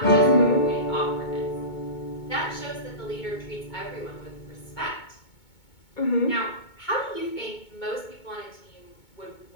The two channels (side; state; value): right; late; 2.2 ms